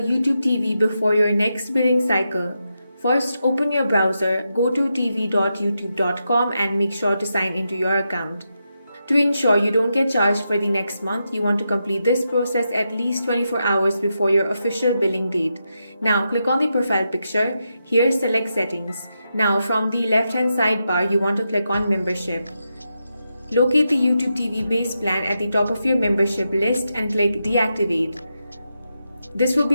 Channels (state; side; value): inverted; both; correlation -0.86